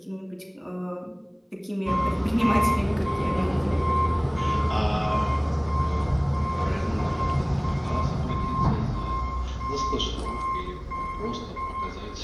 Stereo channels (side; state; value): both; identical; correlation 1.00